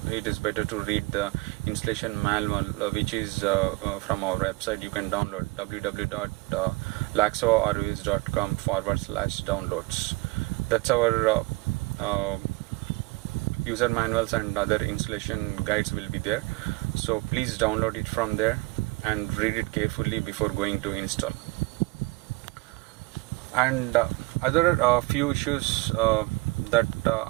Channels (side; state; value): left; quieter; 24.5 dB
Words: it is better to read the installation manual, which is from our website. You can download www.laxorvs.com/downloads. That's our user manuals, and other installation guides will be there. So please download it from there and read it carefully before going to install. And other few issues that